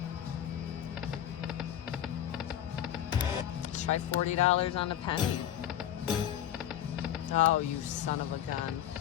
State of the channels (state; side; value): quieter; right; 10.9 dB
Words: Let's try $40 on a penny. Oh, you son of a gun.